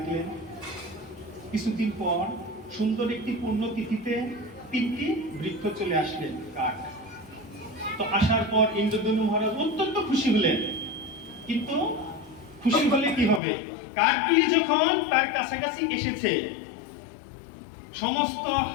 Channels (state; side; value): drops out; right; at 13.4 s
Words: কিছুদিন পর সুন্দর একটি পূর্ণ তিথিতে 3টি বৃক্ষ চলে আসলেন, কাঠ। তো আসার পর ইন্দ্রদ্যুম্ন মহারাজ অত্যন্ত খুশি হলেন, কিন্তু খুশি হলে কি হবে? কাঠগুলি যখন তার কাছাকাছি এসেছে, সমস্ত